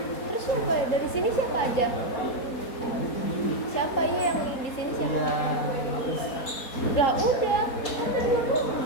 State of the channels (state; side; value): late; right; 4.2 ms